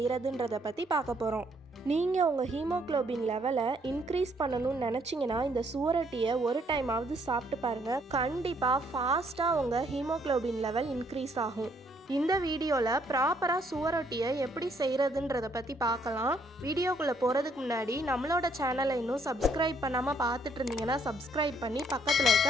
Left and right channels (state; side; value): normal; both; correlation 0.68